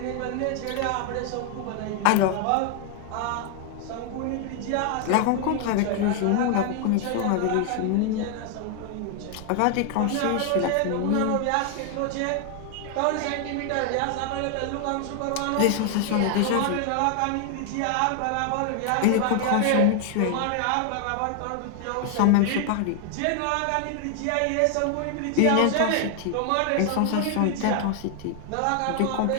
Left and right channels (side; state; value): both; different; correlation 0.00